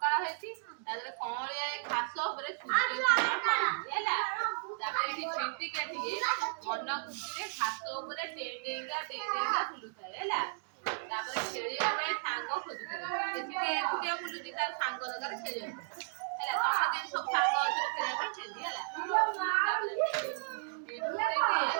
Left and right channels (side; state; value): left; silent; digital silence